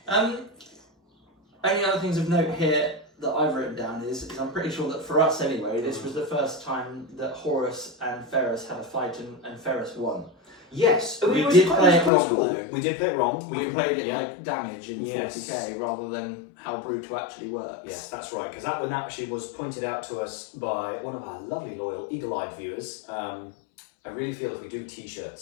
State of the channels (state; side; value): drops out; right; at 12.1 s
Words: Only other things of note here that I've written down is I'm pretty sure that for us anyway, this was the first time that Horus and Ferrus had a fight and Ferrus won. Yes, we did play it wrong though. We did play it wrong. We played it like damage in 40k rather than how brutal actually works. Yes, that's right, because that one actually was pointed out to us by one of our lovely loyal eagle-eyed viewers. I really feel if we do